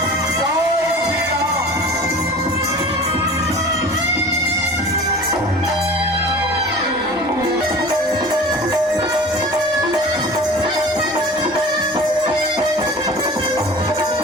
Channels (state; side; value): normal; both; correlation 0.39